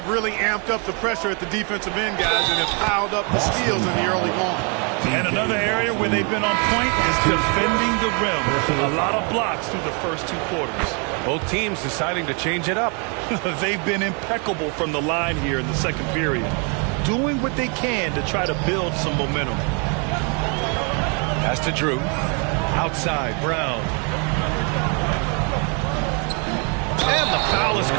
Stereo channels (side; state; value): left; quieter; 35.9 dB